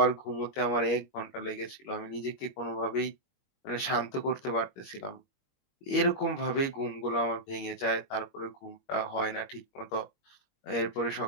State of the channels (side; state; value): right; late; 21 ms